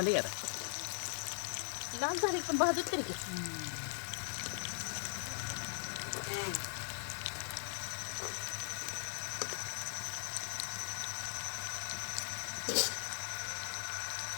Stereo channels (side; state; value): right; silent; digital silence